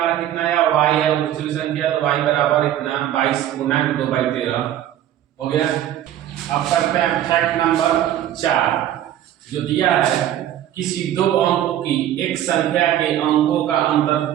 कितना है y है, और दूसरी संख्या तो y बराबर इतना 22 गुना 2/13 हो गया। अब करते हैं फैक्ट नंबर 4 जो दिया है, किसी दो अंकों की एक संख्या के अंकों का अंतर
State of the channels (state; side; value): quieter; left; 11.8 dB